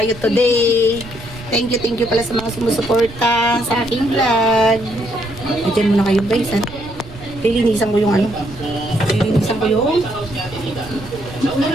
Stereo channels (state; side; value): noise; right; rumble, 16 dB below the sound